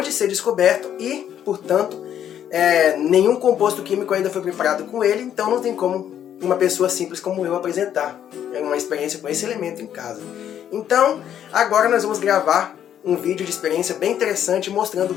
de ser descoberto e, portanto, nenhum composto químico ainda foi preparado com ele, então não tem como uma pessoa simples como eu apresentar uma experiência com esse elemento em casa. Então, agora nós vamos gravar um vídeo de experiência bem interessante mostrando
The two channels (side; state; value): right; quieter; 9.9 dB